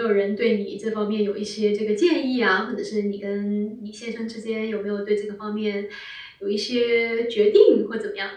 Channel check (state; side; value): identical; both; correlation 1.00